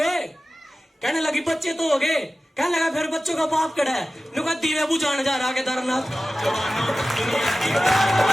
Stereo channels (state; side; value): normal; both; correlation 0.95